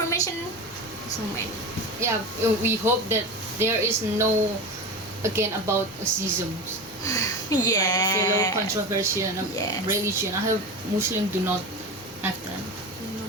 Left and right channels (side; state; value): both; normal; correlation 0.26